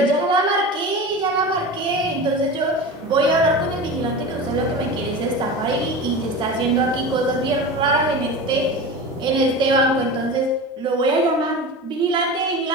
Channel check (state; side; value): normal; both; correlation 0.29